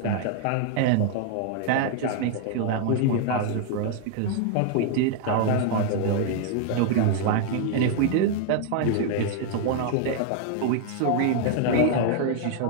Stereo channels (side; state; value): both; different; correlation 0.00